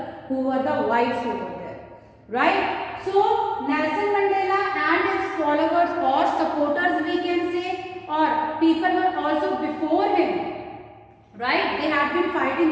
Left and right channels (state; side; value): identical; both; correlation 1.00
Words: who were the whites over there. Right? So Nelson Mandela and his followers or supporters, we can say, or people were also before him. Right? They had been